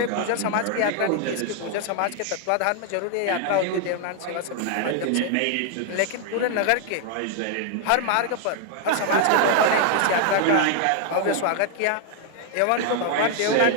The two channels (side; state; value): both; different; correlation 0.00